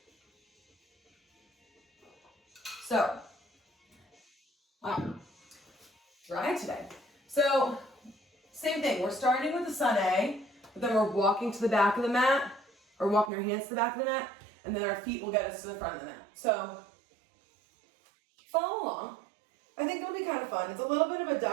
So, wow, dry today. So, same thing. We're starting with the sun A, but then we're walking to the back of the mat, or walking our hands to the back of the mat, and then our feet will get us to the front of the mat. So, follow along. I think it'll be kind of fun. It's a little bit of a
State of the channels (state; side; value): drops out; left; at 13.3 s